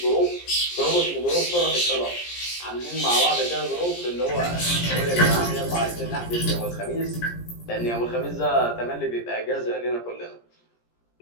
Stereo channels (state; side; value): late; right; 17 ms